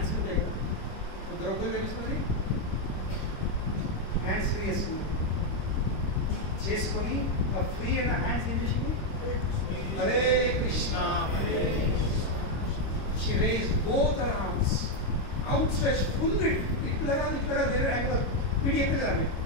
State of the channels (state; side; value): late; right; 26 ms